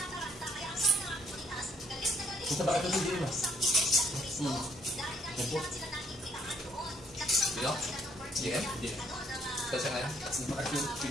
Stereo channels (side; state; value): both; normal; correlation 0.67